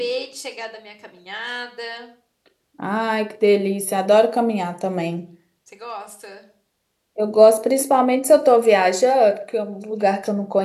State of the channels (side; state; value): both; identical; correlation 1.00